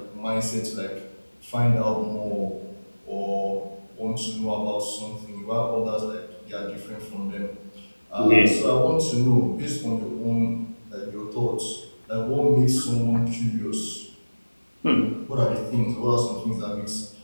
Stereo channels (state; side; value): inverted; both; correlation -1.00